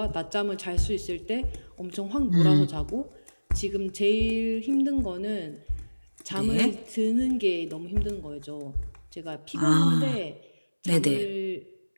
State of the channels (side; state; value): both; inverted; correlation -1.00